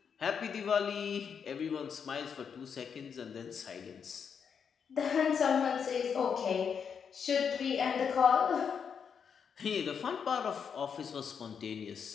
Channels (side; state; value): right; quieter; 6.9 dB